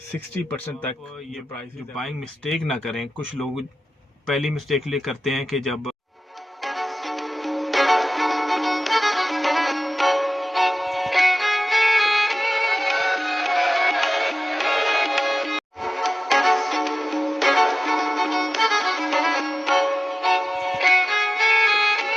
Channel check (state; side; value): normal; both; correlation 0.97